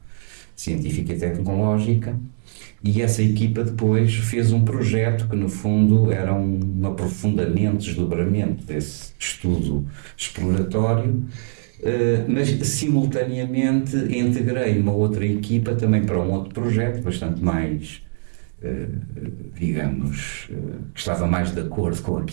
Científica e Tecnológica, e essa equipa depois fez um projeto que, no fundo, era um aprofundamento, desdobramento desse estudo exploratório, mas simultaneamente integrei uma outra equipa também para um outro projeto bastante mais, digamos, que estava mais de acordo com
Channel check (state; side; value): silent; left; digital silence